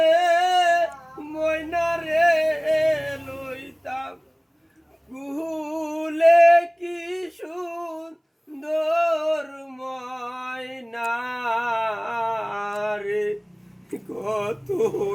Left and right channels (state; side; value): identical; both; correlation 1.00